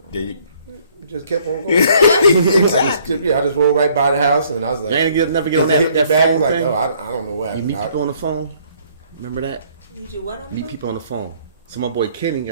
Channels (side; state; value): both; inverted; correlation -0.62